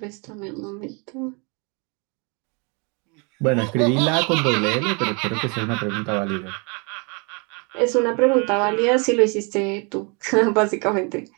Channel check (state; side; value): quieter; left; 32.7 dB